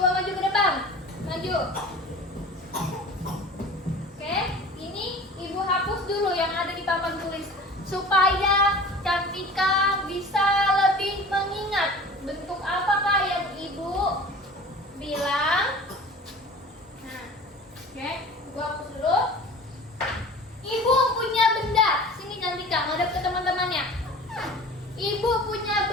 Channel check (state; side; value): normal; both; correlation 0.40